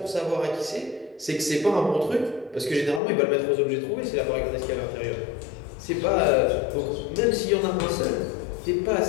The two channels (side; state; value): right; drops out; at 3.0 s